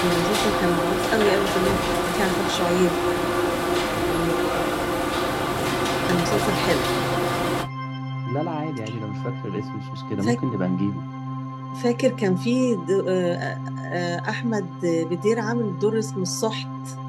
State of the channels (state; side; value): identical; both; correlation 1.00